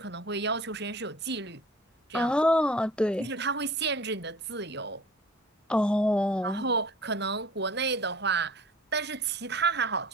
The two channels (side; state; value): both; normal; correlation 0.46